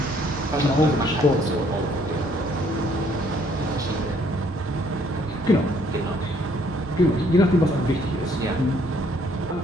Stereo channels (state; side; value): normal; both; correlation 0.64